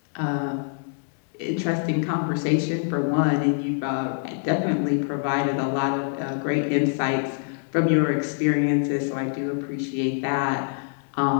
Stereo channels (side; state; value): right; silent; 62 dB below the other